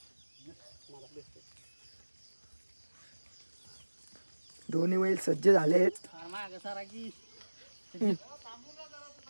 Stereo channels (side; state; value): both; inverted; correlation -1.00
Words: दोन्ही बैल सज्ज झाले आहेत।